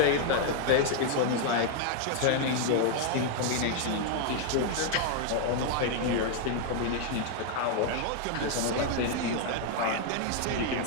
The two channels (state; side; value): different; both; correlation 0.00